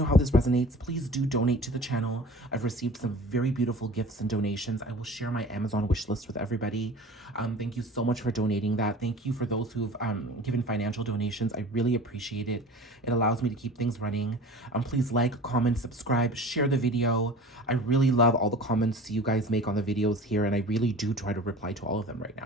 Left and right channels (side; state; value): both; normal; correlation 0.40